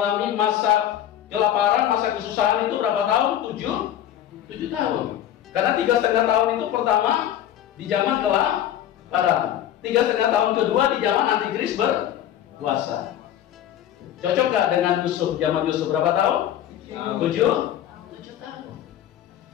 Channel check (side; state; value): right; quieter; 11.3 dB